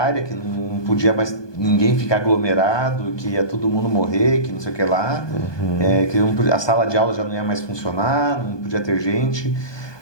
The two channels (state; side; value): late; right; 1.2 ms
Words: que não podia mais ninguém ficar aglomerado, que ia todo mundo morrer, que não sei o que lá. Que a sala de aula já não ia mais funcionar, não podia ter gente.